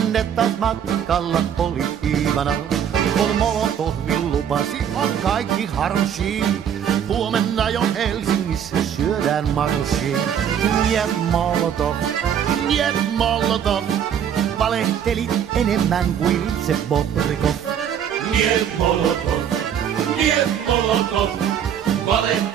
taas matkalla oli Iivana, kun Molotovin lupasi on kaikki harshi. Huomenna jo Helsingissä syödään marshi. Niet Molotov, niet Molotov, valehtelit enemmän kuin itse Bobrikov. Niet Molotov, niet Molotov,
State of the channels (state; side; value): quieter; left; 8.8 dB